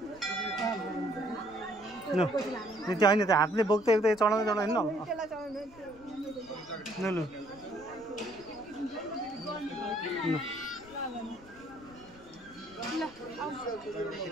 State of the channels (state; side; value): noise; left; rumble, 23 dB below the sound